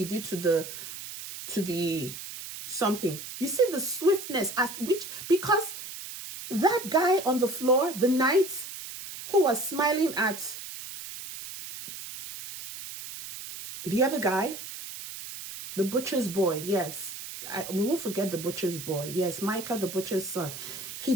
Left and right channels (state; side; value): noise; right; hiss, 10 dB below the sound